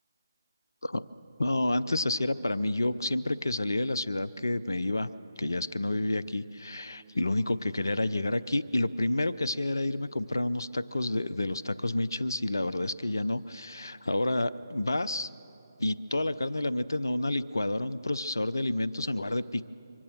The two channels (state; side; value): inverted; both; correlation -0.92